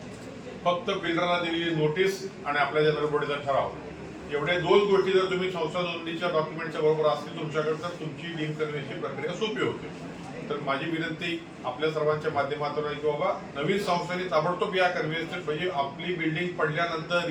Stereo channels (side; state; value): both; identical; correlation 1.00